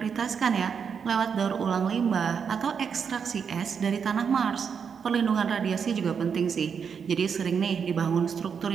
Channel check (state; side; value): quieter; left; 6.7 dB